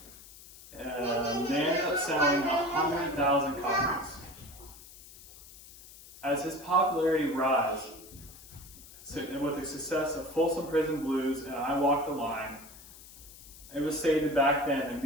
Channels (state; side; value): noise; left; hiss, 19 dB below the sound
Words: And they ended up selling 100,000 copies. As his popularity rose, with the success of Folsom Prison Blues and "I Walk the Line," it was stated back then that